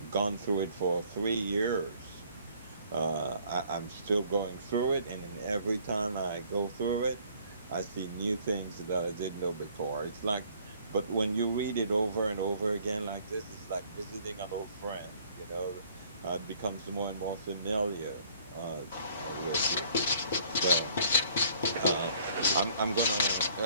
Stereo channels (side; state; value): both; inverted; correlation -0.59